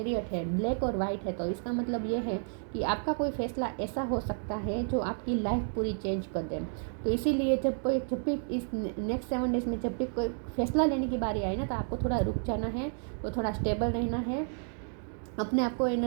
है, ब्लैक और वाइट है, तो इसका मतलब ये है कि आपका कोई फैसला ऐसा हो सकता है जो आपकी लाइफ पूरी चेंज कर दे। तो इसीलिए जब भी इस नेक्स्ट 7 डेज में जब भी कोई फैसला लेने की बारी आए ना, तो आपको थोड़ा रुक जाना है, तो थोड़ा स्टेबल रहना है, अपने आप को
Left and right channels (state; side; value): silent; left; 57 dB below the other